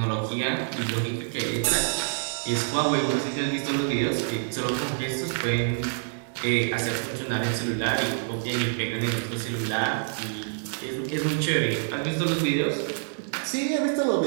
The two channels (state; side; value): silent; left; digital silence